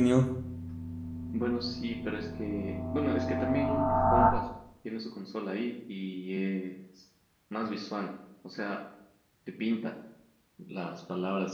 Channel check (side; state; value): both; identical; correlation 1.00